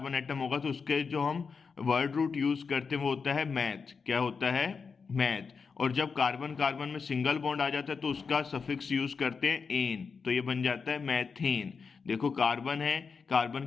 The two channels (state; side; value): quieter; right; 5.4 dB